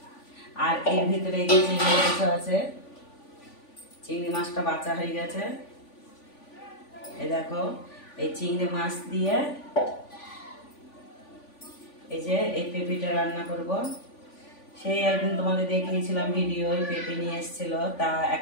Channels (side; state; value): right; late; 3.5 ms